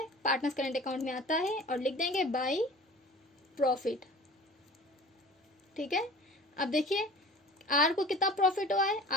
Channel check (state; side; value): normal; both; correlation 0.42